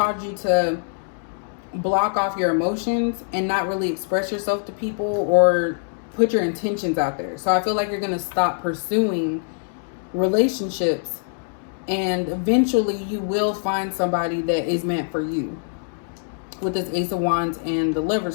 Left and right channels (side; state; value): right; silent; digital silence